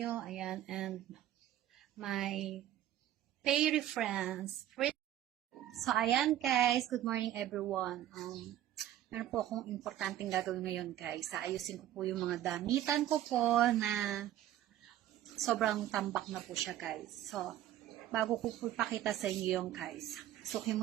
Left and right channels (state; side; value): quieter; left; 12.6 dB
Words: ayan, and my fairy friends. So, ayan guys, good morning everyone. Meron po akong importanteng gagawin ngayon guys. Ayusin ko po yung mga damitan ko po na sobrang tambak na po siya guys. So, bago ko po ipakita sa inyo yung guys, sukin